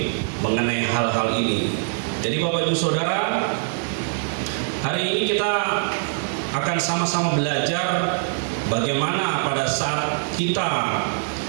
mengenai hal-hal ini. Jadi Bapak Ibu Saudara, hari ini kita akan sama-sama belajar bagaimana pada saat kita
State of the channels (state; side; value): silent; left; digital silence